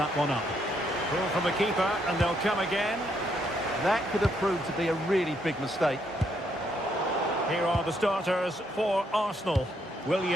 one up. Ball from the keeper, and they'll come again. That could have proved to be a really big mistake. Here are the starters for Arsenal.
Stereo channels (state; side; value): normal; both; correlation 0.74